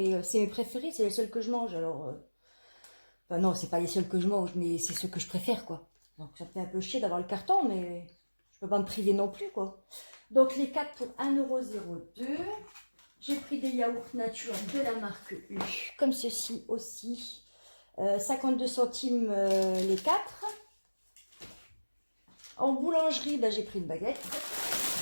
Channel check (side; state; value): both; inverted; correlation -1.00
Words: c'est mes préférés, c'est les seuls que je mange. Alors, enfin non, c'est pas les seuls que je mange, mais c'est ceux que je préfère, quoi. Donc ça me fait un peu chier d'avoir le carton, mais je peux pas me priver non plus, quoi. Donc les 4 pour 1,02 €. J'ai pris des yaourts nature de la marque U, comme ceci aussi. 52 centimes les 4. En boulangerie, ben, j'ai pris une baguette.